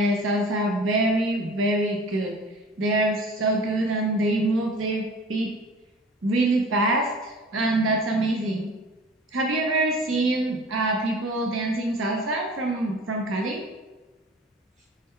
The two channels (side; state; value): both; normal; correlation 0.43